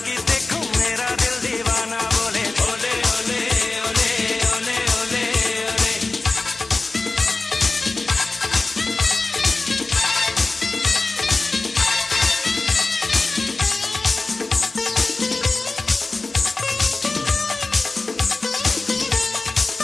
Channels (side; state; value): right; quieter; 3.4 dB